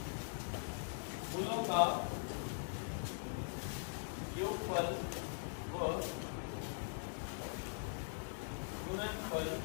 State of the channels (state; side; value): silent; right; digital silence